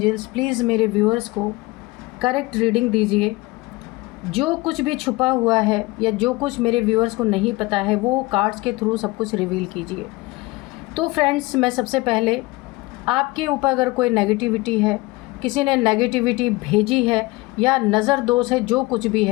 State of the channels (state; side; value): quieter; right; 22.1 dB